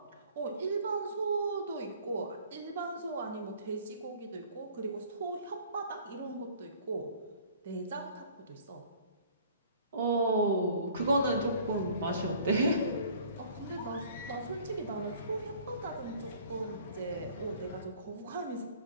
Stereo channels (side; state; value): both; inverted; correlation -0.52